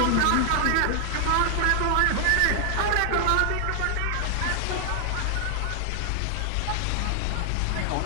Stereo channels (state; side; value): different; both; correlation 0.00